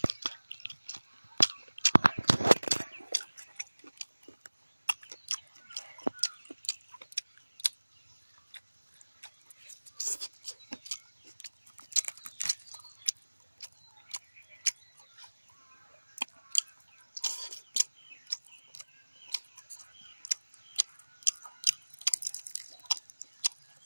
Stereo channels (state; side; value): inverted; both; correlation -1.00